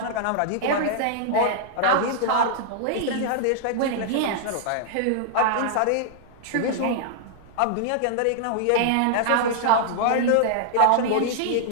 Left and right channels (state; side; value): different; both; correlation -0.01